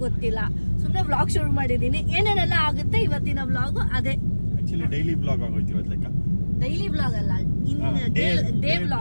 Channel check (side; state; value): both; inverted; correlation -1.00